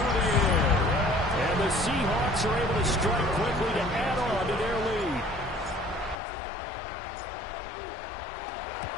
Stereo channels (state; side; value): drops out; right; at 6.2 s